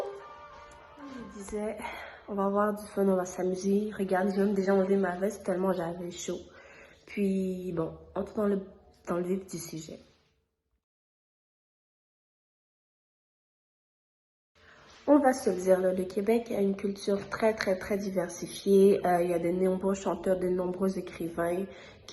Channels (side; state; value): both; identical; correlation 1.00